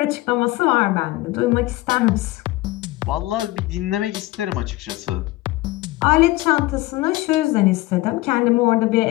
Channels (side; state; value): right; quieter; 19.2 dB